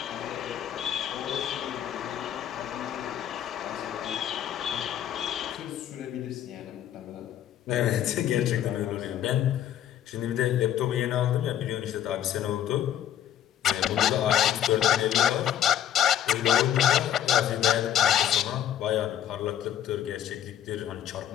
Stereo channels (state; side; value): quieter; right; 10.7 dB